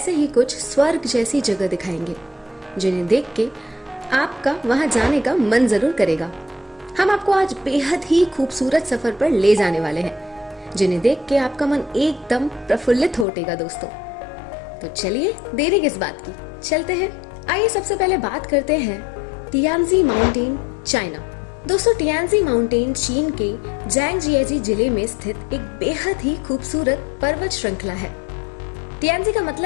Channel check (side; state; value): right; drops out; at 13.2 s